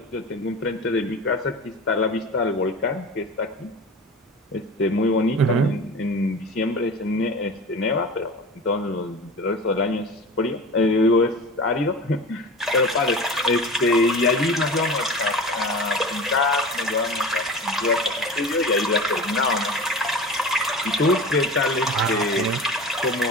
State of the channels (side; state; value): both; normal; correlation 0.34